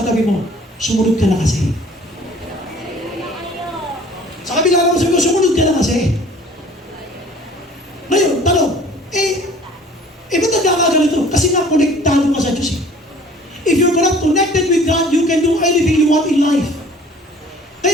mo, sumunod ka na kasi. Sa kabila naman sabi mo, sumunod ka na kasi. Ngayon, tanong, ba't nagkakaganito? Kasi nga, konektado ka sa Diyos eh. If you're not connected with God, you can do anything you want in life.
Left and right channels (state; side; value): normal; both; correlation 0.50